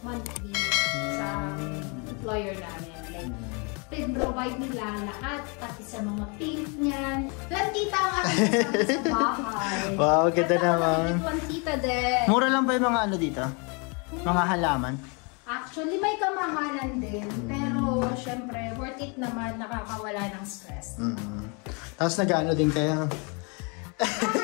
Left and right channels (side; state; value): right; quieter; 33.0 dB